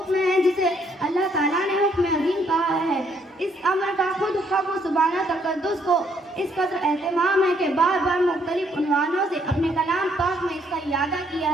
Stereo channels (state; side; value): normal; both; correlation 0.69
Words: ہے جسے اللہ تعالیٰ نے حکم عظیم کہا ہے۔ اس امر کا خود حق و سبحانہ تقدس کو اس قدر اہتمام ہے کہ بار بار مختلف عنوانوں سے اپنے کلام پاک میں اس کا اعادہ کیا